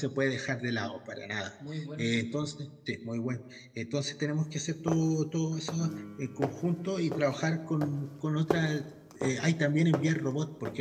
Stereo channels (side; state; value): both; identical; correlation 1.00